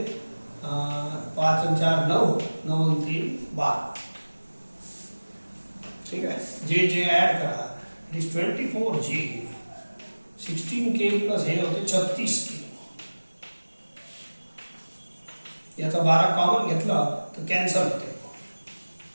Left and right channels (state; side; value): inverted; both; correlation -1.00